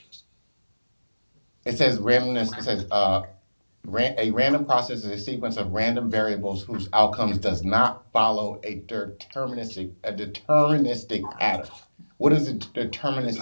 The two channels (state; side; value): inverted; both; correlation -1.00